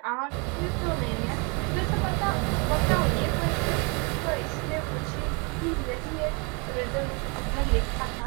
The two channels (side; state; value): left; quieter; 32.1 dB